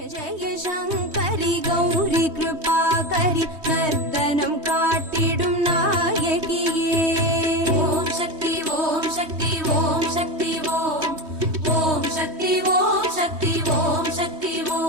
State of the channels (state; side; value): late; left; 3.2 ms